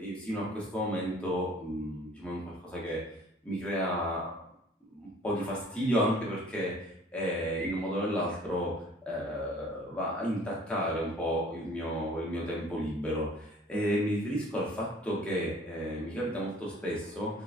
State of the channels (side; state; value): both; normal; correlation 0.52